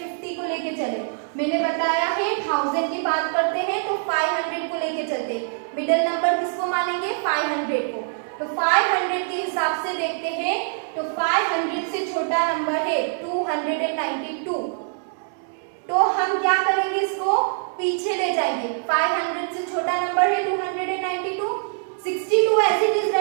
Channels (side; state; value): left; silent; digital silence